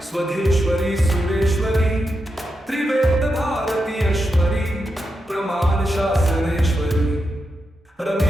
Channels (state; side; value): normal; both; correlation 0.86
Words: स्वधेश्वरी सुरेश्वरी त्रिवेद भारतीयश्वरी प्रमाण शासनेश्वरी